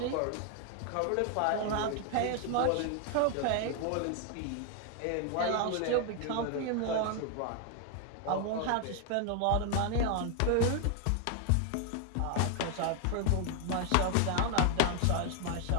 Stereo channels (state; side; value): different; both; correlation 0.01